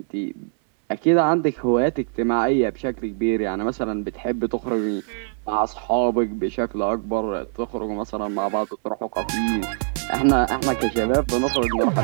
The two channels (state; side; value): silent; left; 61 dB below the other